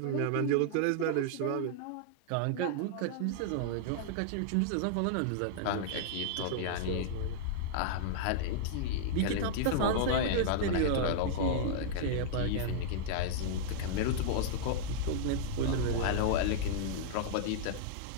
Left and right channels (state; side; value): different; both; correlation -0.01